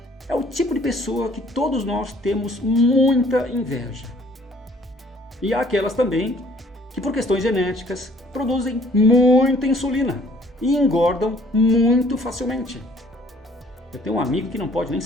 É o tipo de pessoa que todos nós temos muita inveja. E há aquelas também que, por questões genéticas, produzem muita insulina e engordam muito facilmente. Eu tenho um amigo que não pode nem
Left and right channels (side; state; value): both; normal; correlation 0.59